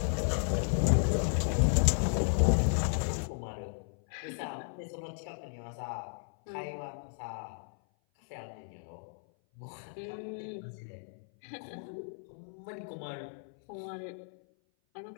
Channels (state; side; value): silent; right; 55 dB below the other